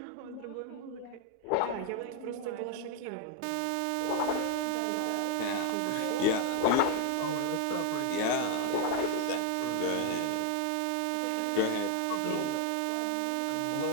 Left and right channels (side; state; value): both; different; correlation 0.00